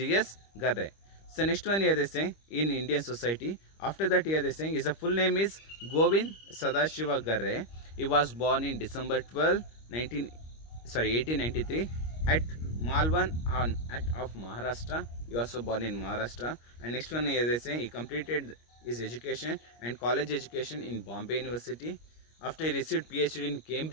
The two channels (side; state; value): right; late; 25 ms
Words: Garre. So next one here they say in Indian society. After that here they saying his full name is Govind Sadashiva Garre. He was born in December 12, 1893 at Malvan of Maharashtra. He also born in Maharashtra. And next one, as I say, he completed his education and college education in Bombay University. After he received PhD in